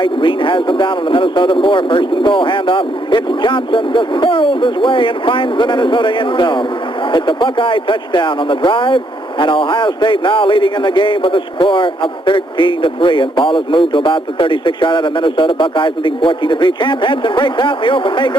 Green has them down on the Minnesota 4. First and goal handoff. It's Johnson just hurls his way and finds the Minnesota end zone. It's a Buckeye touchdown on the drive, and Ohio State now leading in the game with a score of 13-3. And ball is moved to about the 36-yard line of Minnesota. Buckeyes leading 14-3. Champ Henson breaks out in the open. May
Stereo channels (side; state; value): both; normal; correlation 0.72